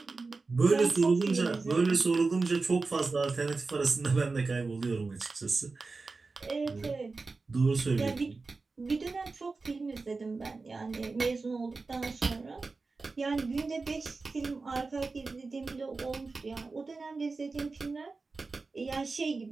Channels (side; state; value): left; quieter; 3.9 dB